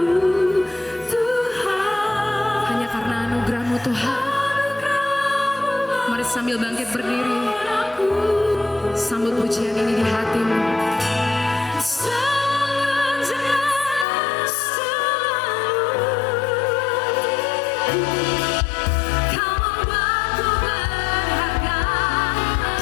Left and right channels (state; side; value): drops out; right; at 14.1 s